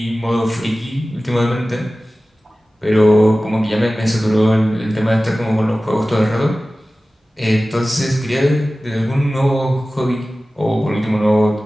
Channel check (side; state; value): both; normal; correlation 0.96